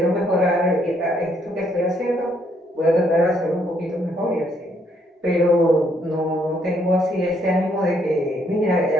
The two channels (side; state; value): both; normal; correlation 0.70